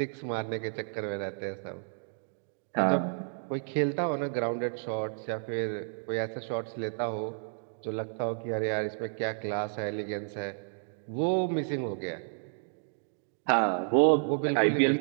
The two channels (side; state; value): left; silent; digital silence